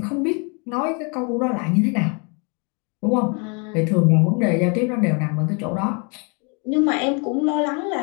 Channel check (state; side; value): quieter; right; 34.6 dB